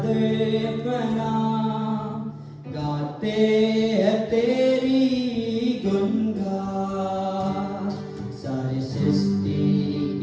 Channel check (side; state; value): both; identical; correlation 1.00